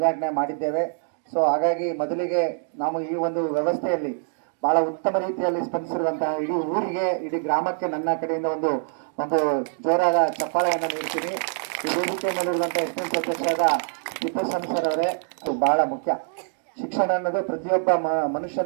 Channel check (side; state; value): left; silent; digital silence